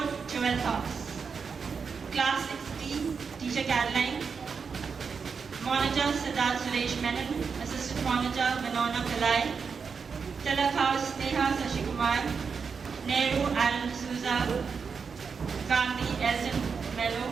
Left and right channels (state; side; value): quieter; left; 5.7 dB